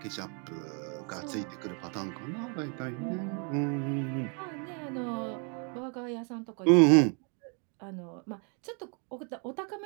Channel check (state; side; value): quieter; left; 37.6 dB